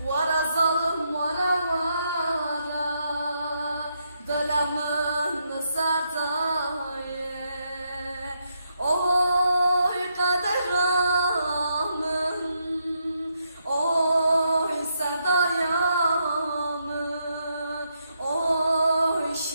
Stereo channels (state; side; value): inverted; both; correlation -0.79